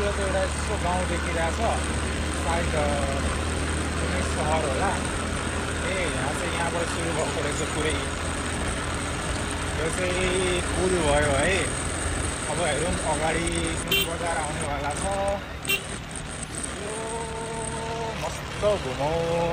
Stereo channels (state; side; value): identical; both; correlation 1.00